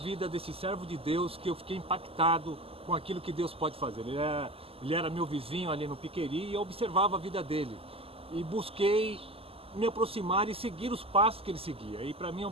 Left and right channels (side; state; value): left; late; 0.28 ms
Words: desse servo de Deus que eu fiquei impactado com aquilo que Deus pode fazer. Ele era meu vizinho ali no Piqueri e eu observava a vida dele. E busquei me aproximar e seguir os passos que ele seguia. E para mim é um